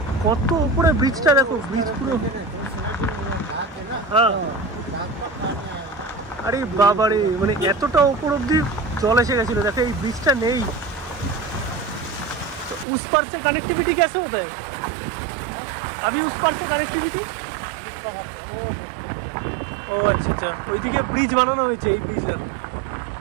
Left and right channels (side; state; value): left; drops out; at 12.9 s